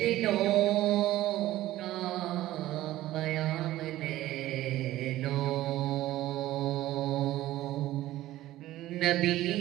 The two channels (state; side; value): quieter; left; 15.3 dB